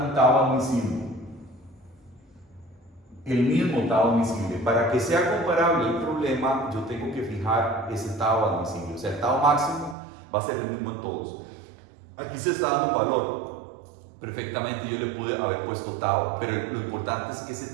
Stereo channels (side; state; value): left; drops out; at 10.0 s